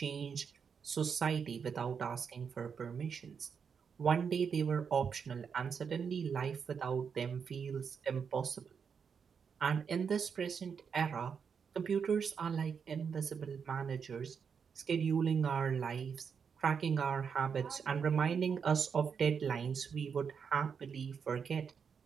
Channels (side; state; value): left; quieter; 6.5 dB